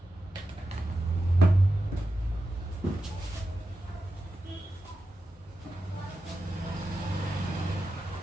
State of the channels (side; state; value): both; normal; correlation 0.90